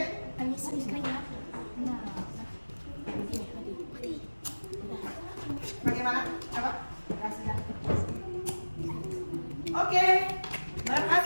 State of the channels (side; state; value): both; inverted; correlation -1.00